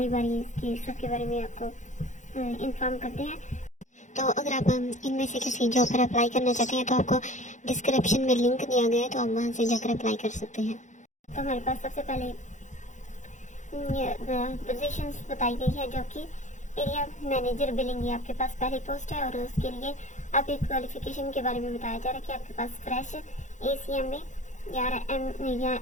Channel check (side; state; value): right; late; 0.35 ms